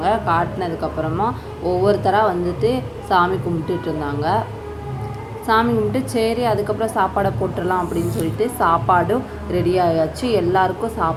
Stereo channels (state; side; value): identical; both; correlation 1.00